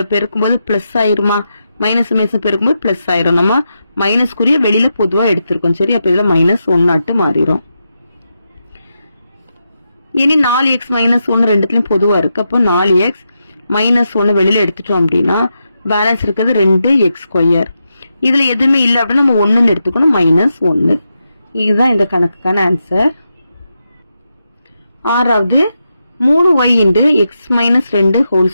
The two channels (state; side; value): inverted; both; correlation -0.86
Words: பெருக்கும்போது பிளஸ் ஆயிருமா? மைனஸும் பெருக்கும்போது பிளஸ் ஆயிரும். நம்ம மைனஸ்க்குரிய வெளியில பொதுவா எடுத்திருக்கோம். சரி? அப்ப இதுல -1 மாறிடும். இனி 4x - 1 ரெண்டுத்துலயும் பொதுவா இருக்கு. அப்போ 4x - 1 வெளியில எடுத்துட்டோம் அப்படின்னா பேலன்ஸ் இருக்குது 2x². இதுல எதுவுமே இல்லை அப்படின்னா நம்ம 1ன்னு எடுத்துக்கணும், -1. இதுதான் இந்த கணக்குக்கான ஆன்சர். ஆறாவது 3y × x - 2 whole